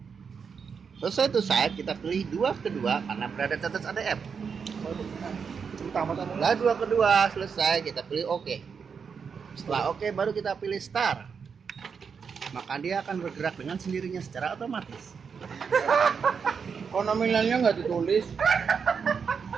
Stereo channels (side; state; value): left; quieter; 6.1 dB